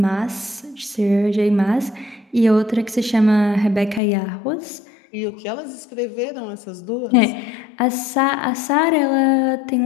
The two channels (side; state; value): right; drops out; at 4.0 s